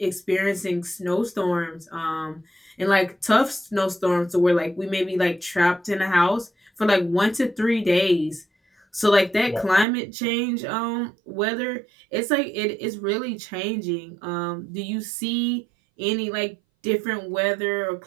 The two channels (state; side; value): drops out; left; at 9.9 s